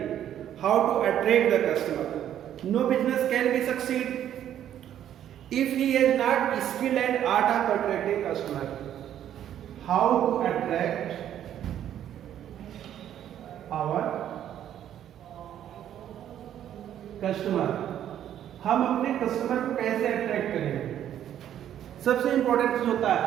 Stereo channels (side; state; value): left; quieter; 10.7 dB